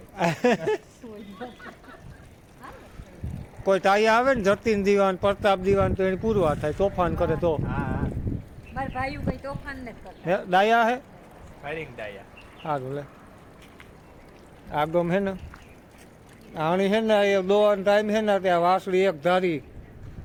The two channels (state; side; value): identical; both; correlation 1.00